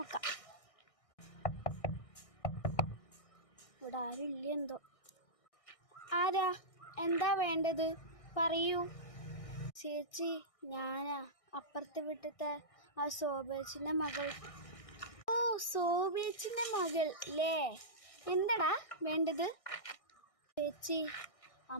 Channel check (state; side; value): late; right; 1.6 ms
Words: ഇവിടെ ആരും ഇല്ല എന്തോ. ആരാ? എന്താ വേണ്ടത്? പറയൂ. ചേച്ചി, ഞാനാ അപ്പുറത്തെ വീട്ടിലത്തെ ആ സോബേച്ചിൻ്റെ മകൾ. ഓ, സോബേച്ചിൻ്റെ മകൾ അല്ലേ? എന്താടാ വേണ്ടത്? ചേച്ചി,